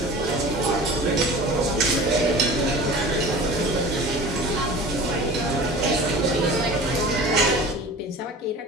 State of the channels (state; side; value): normal; both; correlation 0.39